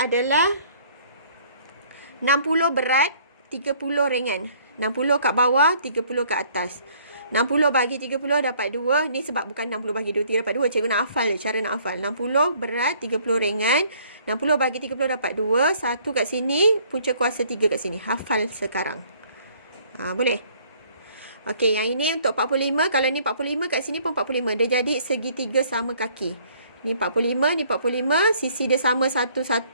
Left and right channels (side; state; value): both; inverted; correlation -0.59